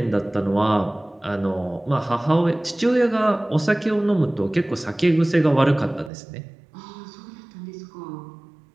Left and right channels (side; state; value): left; drops out; at 6.1 s